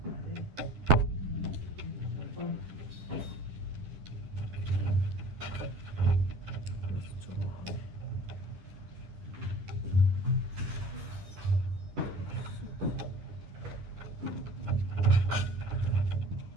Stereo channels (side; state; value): left; late; 10 ms